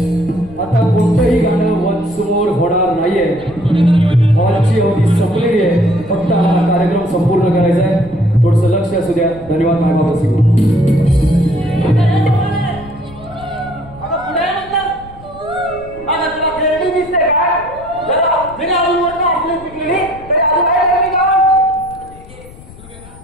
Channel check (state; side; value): noise; left; rumble, 20 dB below the sound